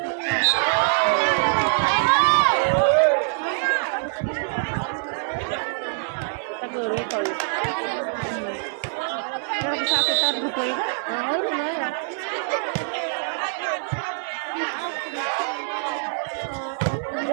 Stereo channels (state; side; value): silent; left; 62 dB below the other